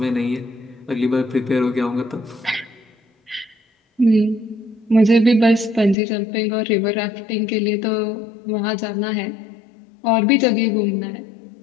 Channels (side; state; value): right; drops out; at 6.0 s